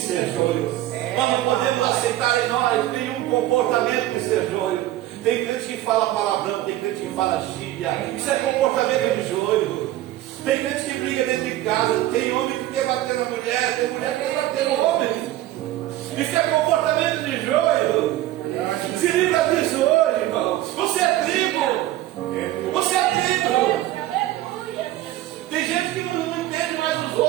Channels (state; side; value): quieter; left; 14.9 dB